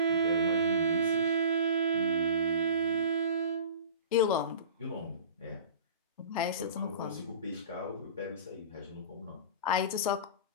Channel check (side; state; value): both; inverted; correlation -0.38